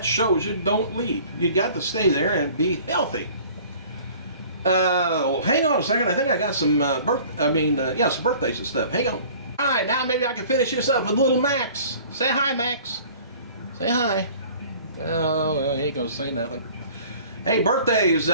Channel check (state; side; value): inverted; both; correlation -0.49